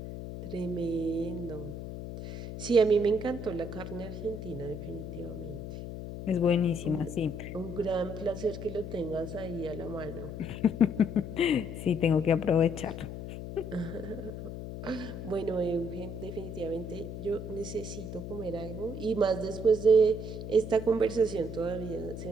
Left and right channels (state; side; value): noise; left; hum, 8 dB below the sound